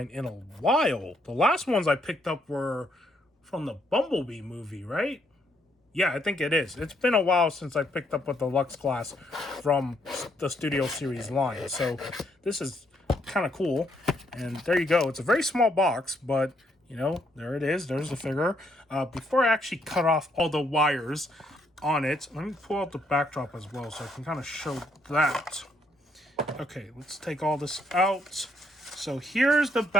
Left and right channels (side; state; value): both; normal; correlation 0.72